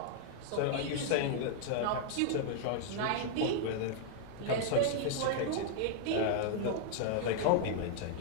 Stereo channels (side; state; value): both; different; correlation -0.01